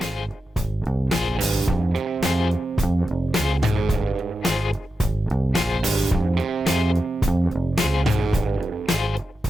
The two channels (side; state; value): both; normal; correlation 0.91